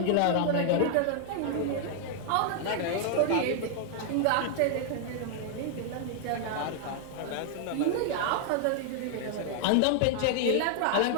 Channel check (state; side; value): different; both; correlation 0.00